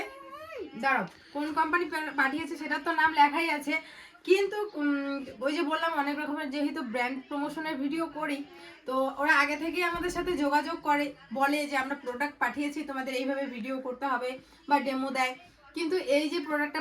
দাঁড়াও, কোন কোম্পানি পাঠিয়েছে সেটা তো নাম লেখাই আছে, কিন্তু ওই যে বললাম অনেক রকমের যেহেতু ব্র্যান্ড প্রমোশনের ভিডিও করি, তো ওরা আগে থেকেই আমাদের সাথে যোগাযোগ করে, বলে যে আমরা প্রোডাক্ট পাঠিয়েছি, তোমাদের এইভাবে ভিডিও করতে হবে বা ডেমো দেয়। কিন্তু এই যে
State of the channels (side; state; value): both; identical; correlation 1.00